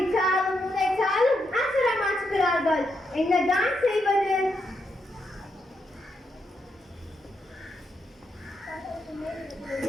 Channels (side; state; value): both; normal; correlation 0.81